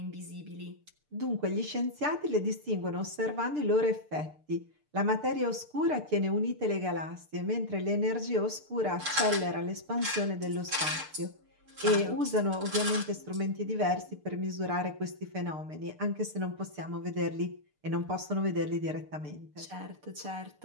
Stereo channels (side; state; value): left; late; 6.7 ms